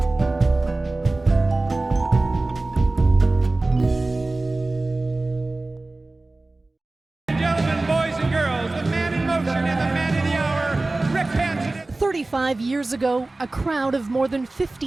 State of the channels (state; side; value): quieter; left; 3.0 dB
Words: Gentlemen, boys and girls, the man in motion and the man of the hour, Rick Hansen. 35 years ago, a crowd of more than